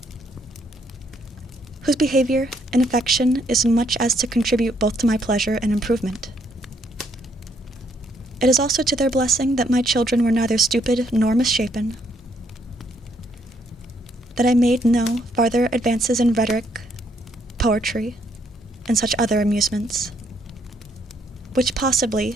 whose behavior and affection is much as to contribute both to my pleasure and improvement. It is also to their blessing that my children were neither stupid nor misshapen, that I made no farther advances in rhetoric, poetry, and such other amusements, which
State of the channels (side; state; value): both; normal; correlation 0.71